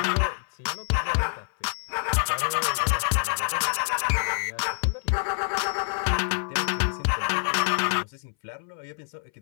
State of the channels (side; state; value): right; silent; 58 dB below the other